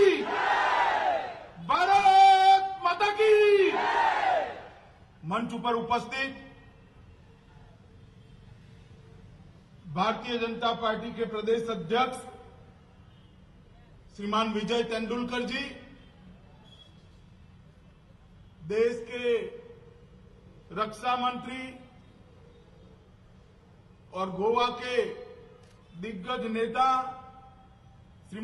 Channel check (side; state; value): both; identical; correlation 1.00